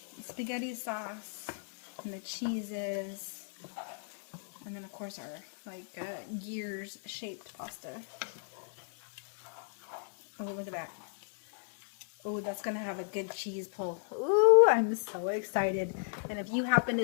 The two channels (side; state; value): right; silent; digital silence